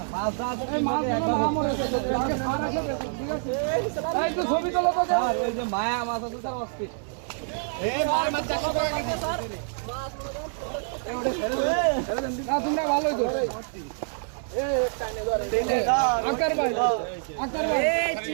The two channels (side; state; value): left; silent; 60 dB below the other